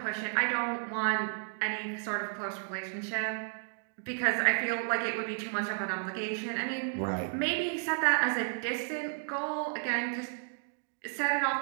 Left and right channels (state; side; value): silent; left; 55 dB below the other